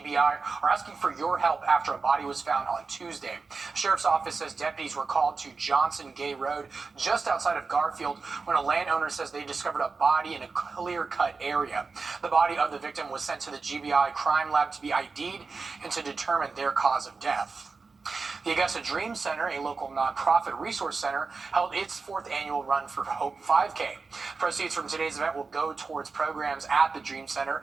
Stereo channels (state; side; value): quieter; left; 4.4 dB